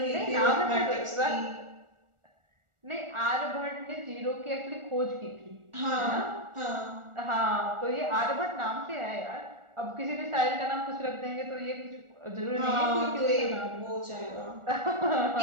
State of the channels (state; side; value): late; left; 1.4 ms